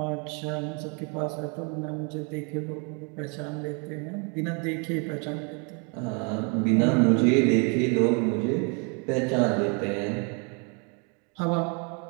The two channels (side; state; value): left; quieter; 35.4 dB